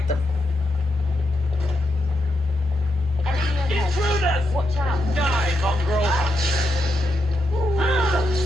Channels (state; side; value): normal; both; correlation 0.83